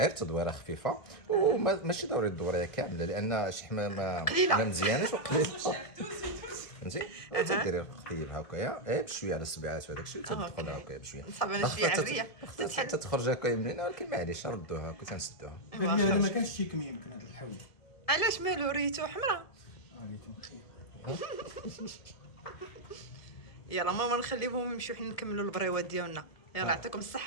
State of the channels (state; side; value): late; right; 2.0 ms